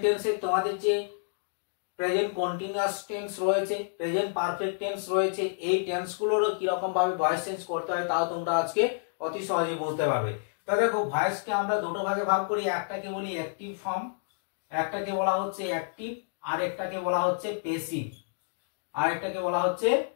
টেন্সের তোমাদের যে প্রেজেন্ট কন্টিনিউয়াস টেন্স রয়েছে, প্রেজেন্ট পারফেক্ট টেন্স রয়েছে, এই টেন্স গুলোরও কিরকম ভাবে ভয়েস চেঞ্জ করতে হয় তাও তোমরা আজকে অতি সহজে বুঝতে পারবে। তো দেখো, ভয়েসকে আমরা দুটো ভাগে ভাগ করি, একটাকে বলি অ্যাক্টিভ ফর্ম, একটাকে বলা হচ্ছে অ্যাক্টিভ, আর একটাকে বলা হচ্ছে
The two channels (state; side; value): silent; right; digital silence